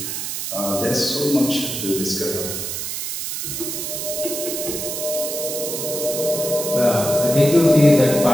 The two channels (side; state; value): right; noise; hiss, 4 dB below the sound